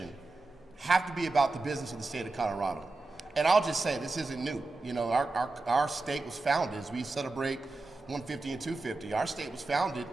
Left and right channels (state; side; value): quieter; left; 3.3 dB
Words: have to be about the business of the state of Colorado. And I'll just say, this isn't new. You know, our state was founded, as we celebrate 150 and 250, our state was founded